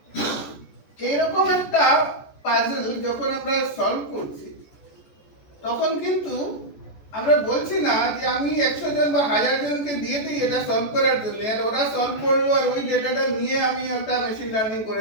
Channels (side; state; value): right; late; 14 ms